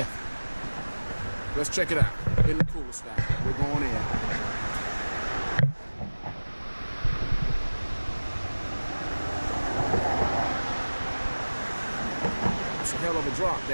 Let's check it out. In the cooler style. We're going in. It's a hell of a drop,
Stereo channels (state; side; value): inverted; both; correlation -1.00